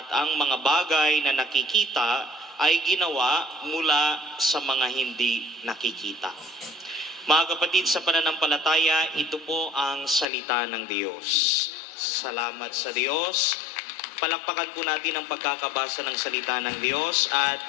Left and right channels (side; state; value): right; drops out; at 10.2 s